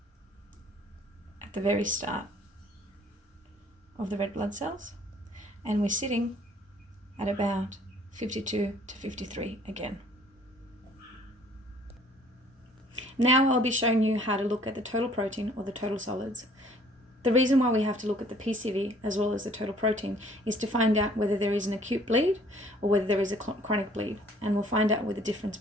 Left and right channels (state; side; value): normal; both; correlation 0.57